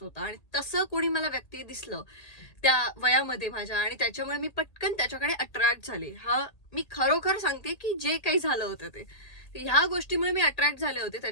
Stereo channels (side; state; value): right; late; 1.8 ms